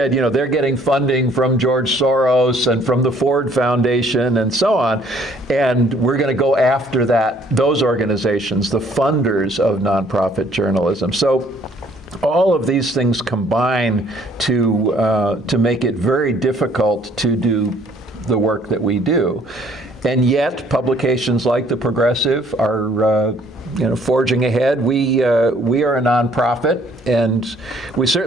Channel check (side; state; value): both; normal; correlation 0.61